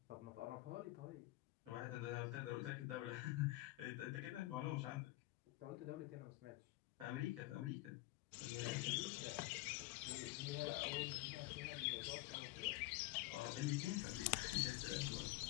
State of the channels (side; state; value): right; quieter; 19.1 dB